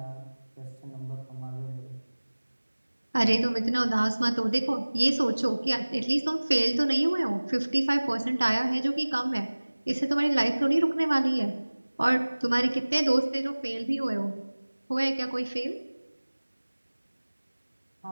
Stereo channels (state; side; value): inverted; both; correlation -1.00